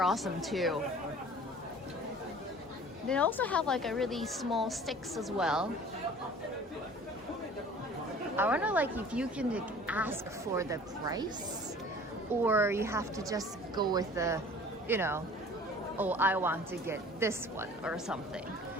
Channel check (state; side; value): normal; both; correlation 0.47